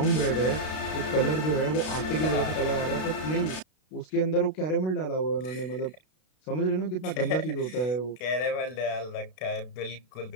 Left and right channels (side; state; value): right; late; 32 ms